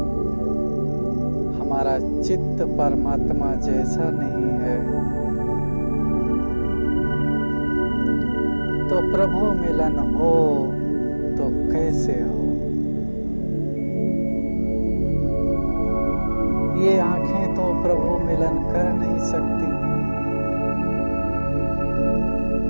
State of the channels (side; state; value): both; inverted; correlation -1.00